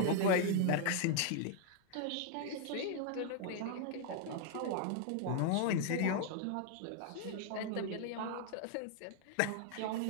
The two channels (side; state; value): both; different; correlation 0.00